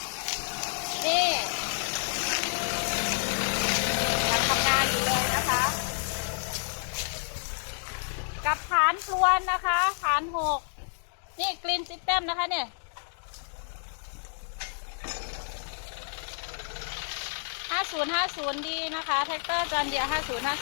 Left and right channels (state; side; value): silent; right; digital silence